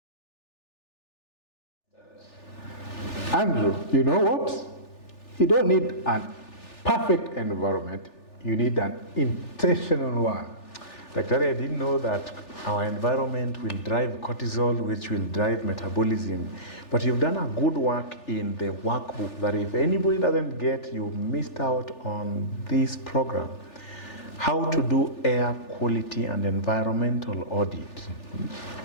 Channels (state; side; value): late; right; 3.4 ms